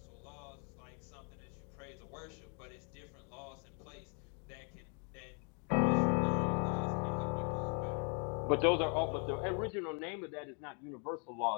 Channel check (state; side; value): quieter; right; 38.9 dB